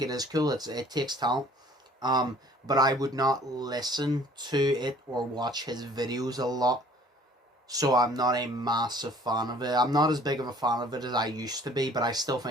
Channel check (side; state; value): both; normal; correlation 0.53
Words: it is cool. It takes talent. But I would not listen to it or watch his videos a lot. So I'm not a massive fan of it. I'm not as big of a fan of it as I used to be, but I still